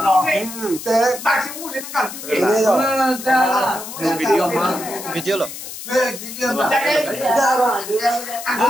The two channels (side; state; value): left; noise; hiss, 10 dB below the sound